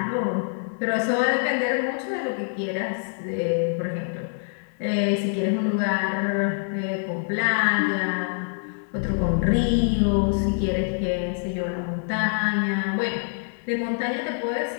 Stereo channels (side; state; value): right; silent; digital silence